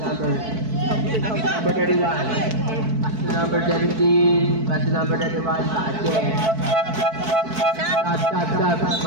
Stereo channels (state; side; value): late; left; 4.6 ms